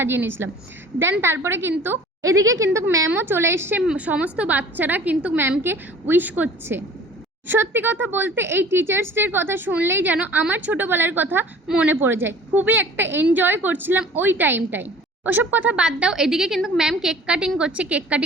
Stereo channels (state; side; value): normal; both; correlation 0.47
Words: নিয়েছিলাম। দেন তারপরে কিন্তু এদিকে কিন্তু ম্যামও চলে এসছে, সমস্ত বাচ্চারা কিন্তু ম্যামকে উইশ করছে। সত্যি কথা বলতে এই টিচার্স ডের কথা শুনলেই যেন আমার ছোটোবেলার কথা মনে পড়ে যায়। খুবই একটা এনজয় করছিলাম ওই টাইমটায়। ওসব কথা বাদ দাও, এদিকে কিন্তু ম্যাম কেক কাটিং করছে। কেক